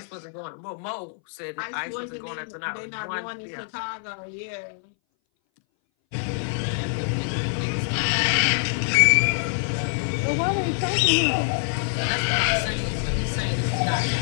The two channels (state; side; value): silent; right; 60 dB below the other